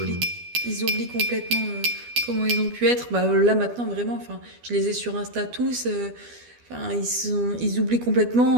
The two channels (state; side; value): late; left; 12 ms